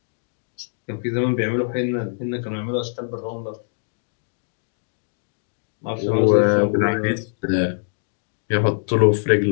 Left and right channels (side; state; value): right; silent; digital silence